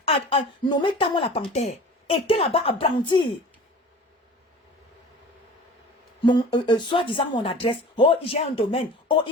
a nommé Camon la Panthère, était là-bas à brandir soi-disant mon adresse. Oh, j'ai un domaine. Oh,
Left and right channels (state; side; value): normal; both; correlation 0.41